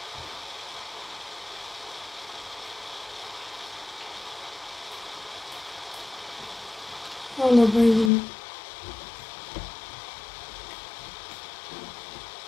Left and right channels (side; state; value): right; drops out; at 8.1 s